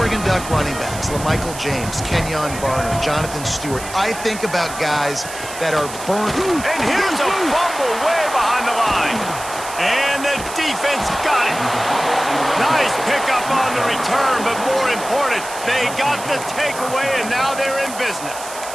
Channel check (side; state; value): right; noise; hiss, 12 dB below the sound